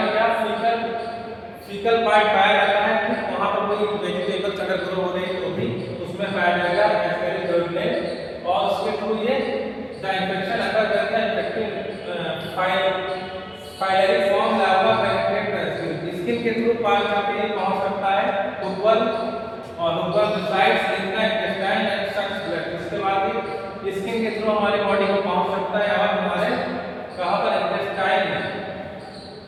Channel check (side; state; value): both; identical; correlation 1.00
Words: क्या फीकल पार्ट पाया जाता है, ठीक वहां पर कोई वेजिटेबल्स अगर ग्रो हो रहे हैं तो भी उसमें पाया जाएगा एस्कैरिस डुओडेनल, और उसके थ्रू ये द इन्फेक्शन अगर करता है infective filariform larva penetrate the skin के थ्रू पार करके पहुंच सकता है हुकवर्म, और hookworm resides in the intestine and sucks blood. इसके बाद स्किन के थ्रू हमारे बॉडी को पहुंच सकता है और हमारे कहां पर? इंटेस्टाइन में,